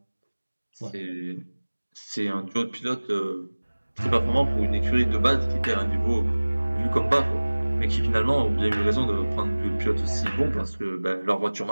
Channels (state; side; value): inverted; both; correlation -1.00